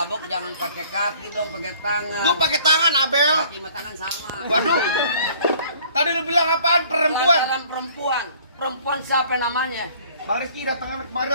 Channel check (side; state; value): both; inverted; correlation -0.55